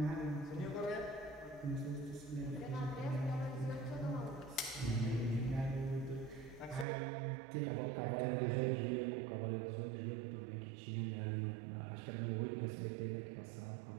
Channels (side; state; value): left; drops out; at 6.9 s